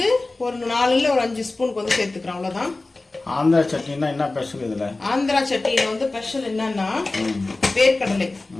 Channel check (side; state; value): right; quieter; 3.2 dB